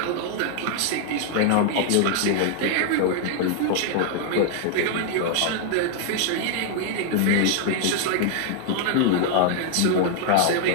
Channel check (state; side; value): different; both; correlation 0.00